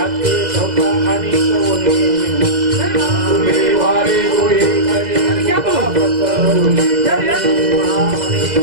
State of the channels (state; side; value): late; left; 2.0 ms